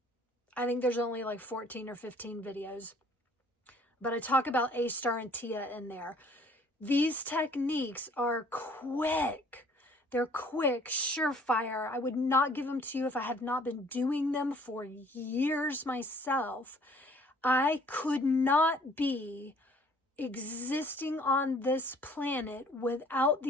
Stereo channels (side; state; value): both; normal; correlation 0.56